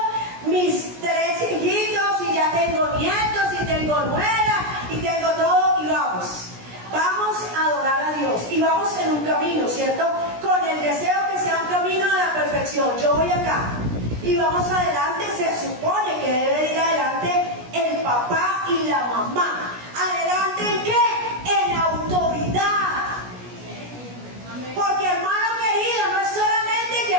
mis 3 hijitos, y ya tengo nietos y tengo nuera y tengo todo, y vamos a adorar a Dios, y vamos en un camino, ¿cierto? Con el deseo que sea un camino de la perfección. Yo voy acá y vamos adelante. Se supone que debe ir adelante el papá y la mamá. ¿Adelante en qué? En autoridad. Porque, hermano querido, no es solamente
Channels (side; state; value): left; late; 17 ms